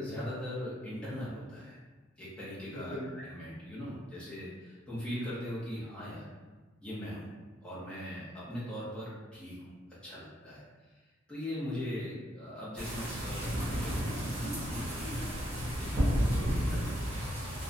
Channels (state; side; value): normal; both; correlation 0.77